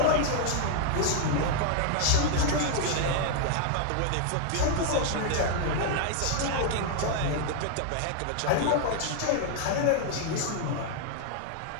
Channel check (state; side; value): different; both; correlation 0.00